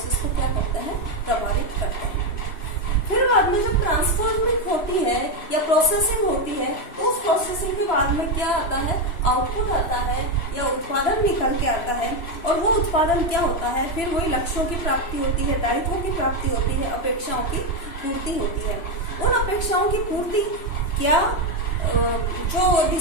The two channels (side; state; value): right; late; 3.0 ms